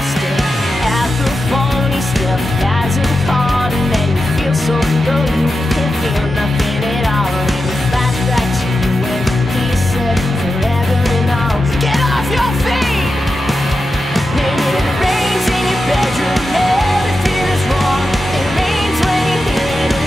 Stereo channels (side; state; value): both; normal; correlation 0.90